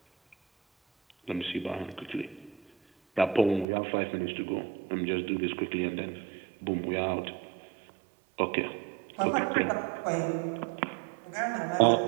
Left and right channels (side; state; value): left; drops out; at 3.7 s